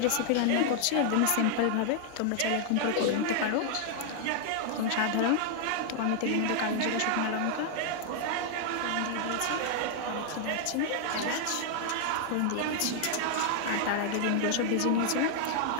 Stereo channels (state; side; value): different; both; correlation 0.00